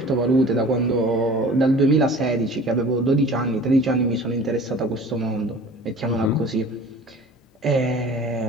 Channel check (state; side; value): normal; both; correlation 0.44